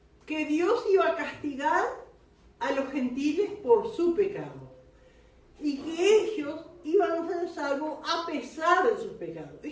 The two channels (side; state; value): both; identical; correlation 1.00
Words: que Dios iba a castigar a los gentiles por su pecado y que ellos iban a ser salvos a pesar de sus pecados.